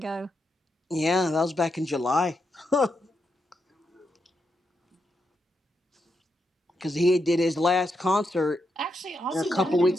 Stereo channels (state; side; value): normal; both; correlation 0.83